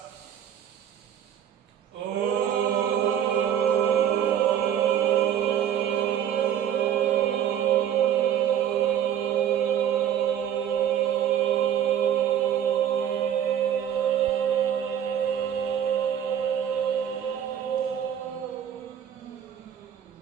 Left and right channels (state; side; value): quieter; left; 9.6 dB